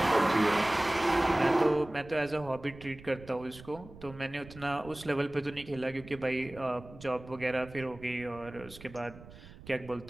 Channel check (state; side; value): noise; right; rumble, 18 dB below the sound